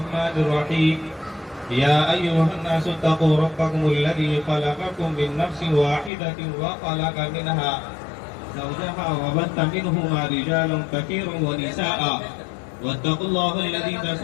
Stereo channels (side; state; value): right; drops out; at 6.1 s